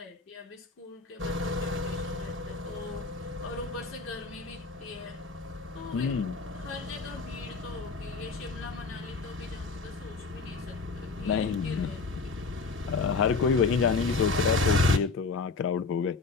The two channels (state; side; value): quieter; right; 4.2 dB